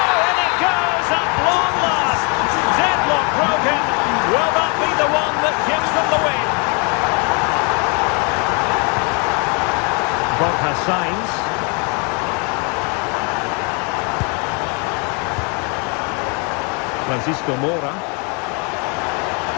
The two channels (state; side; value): quieter; right; 34.0 dB